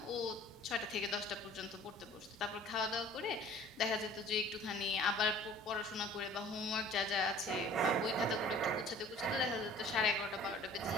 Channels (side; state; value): both; normal; correlation 0.49